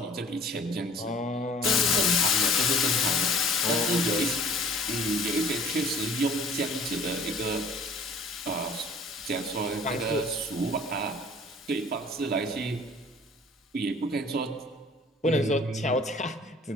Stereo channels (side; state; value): both; normal; correlation 0.50